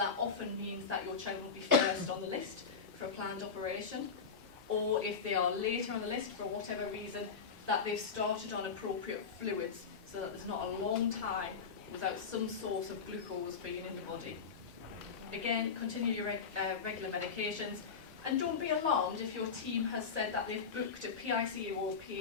often means that your child will be first on the list for a planned operation. Or if they are later on the list for whatever reason, that they've started on appropriate fluids so that there's not a long time without some source of glucose being in the body. Again, continue your regular medications, and don't be alarmed if your team has said that they've booked a PICU or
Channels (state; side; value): quieter; right; 5.8 dB